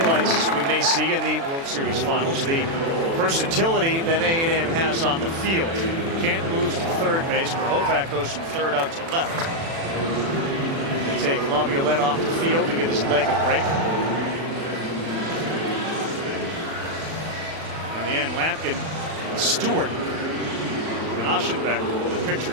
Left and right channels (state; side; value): late; left; 36 ms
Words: we may see in the World Series finals, the versatility that A&M has on the field. Kent moves to third base. Grahovac goes from third out to left. They take La Violette off the field to give his leg a break. In the end, Lamkin, Stewart, and Aschenbeck, the